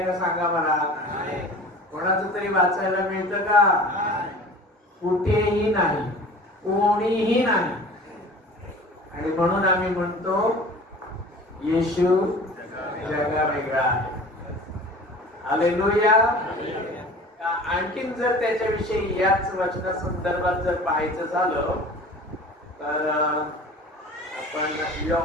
का सांगा मला? कोणाचं तरी वाचायला मिळतं का? कुठेही नाही, कोणीही नाही. आणि म्हणून आम्ही म्हणतो येशू जगा वेगळा आहे. हालेलुया. आणखीन जर त्याच्याविषयी याच वचना संदर्भात जर पाहायचं झालं तर आपण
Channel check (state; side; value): normal; both; correlation 0.42